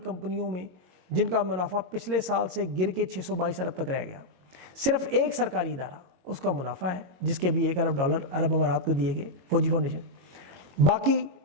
میں جن کا منافع پچھلے سال سے گر کے 622 ارب تک رہ گیا. صرف ایک سرکاری ادارہ اس کا منافع ہے جس کے بھی $1 ارب عرب امارات کو دیے گئے, فوجی فاؤنڈیشن. باقی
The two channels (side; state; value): left; late; 22 ms